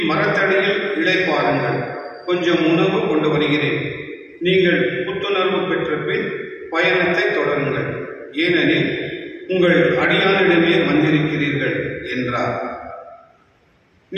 இளைப்பாருங்கள். கொஞ்சம் உணவு கொண்டு வருகிறேன். நீங்கள் புத்துணர்வு பெற்ற பின் பயணத்தை தொடருங்கள். ஏனெனில் உங்கள் அடியானிடமே வந்திருக்கிறீர்கள் என்றார்.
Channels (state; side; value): identical; both; correlation 1.00